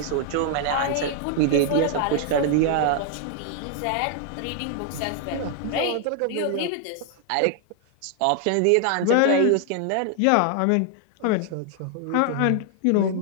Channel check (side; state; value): both; different; correlation 0.00